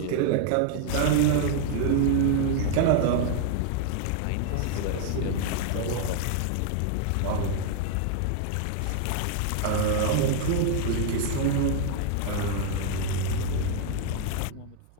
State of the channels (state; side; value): different; both; correlation 0.00